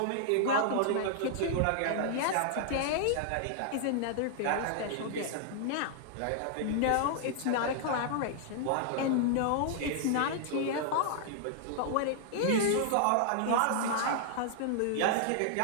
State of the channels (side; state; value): both; different; correlation -0.01